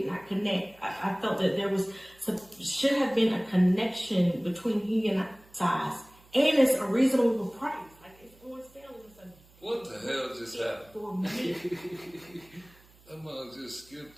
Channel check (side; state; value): right; noise; hum, 28 dB below the sound